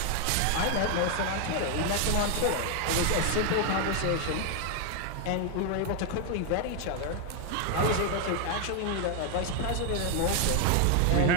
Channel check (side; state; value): both; different; correlation 0.01